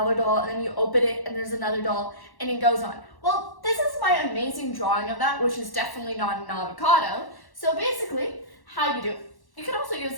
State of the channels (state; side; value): late; right; 1.1 ms